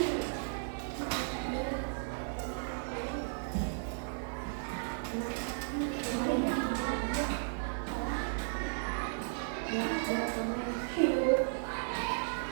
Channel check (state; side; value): silent; left; digital silence